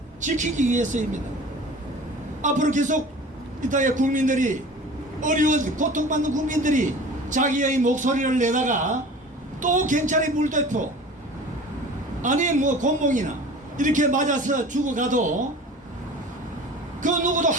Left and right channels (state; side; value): normal; both; correlation 0.41